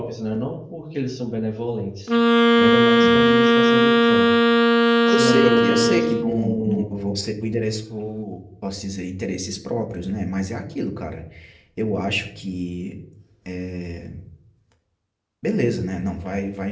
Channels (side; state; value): both; identical; correlation 1.00